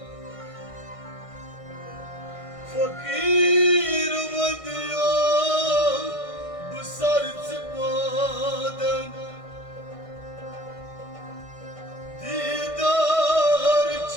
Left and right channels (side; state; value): right; late; 1.6 ms